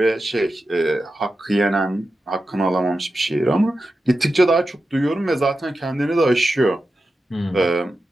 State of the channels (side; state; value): both; normal; correlation 0.91